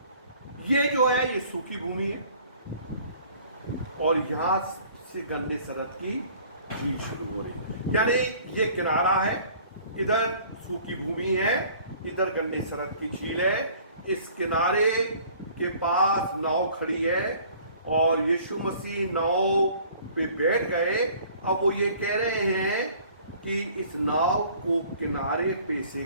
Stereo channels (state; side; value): inverted; both; correlation -0.53